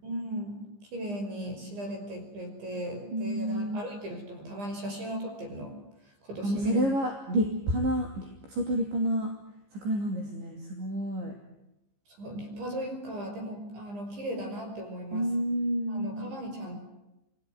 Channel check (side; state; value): left; late; 15 ms